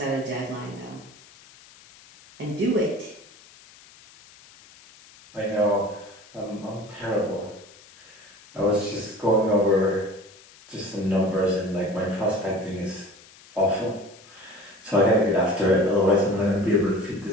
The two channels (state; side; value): noise; left; hiss, 24 dB below the sound